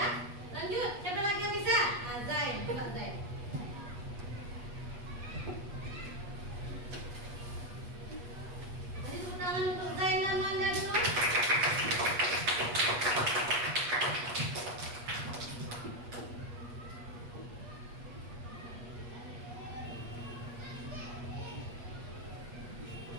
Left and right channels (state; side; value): late; left; 8.3 ms